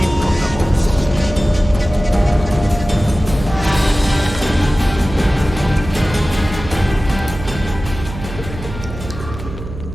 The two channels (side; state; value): right; noise; hum, 11 dB below the sound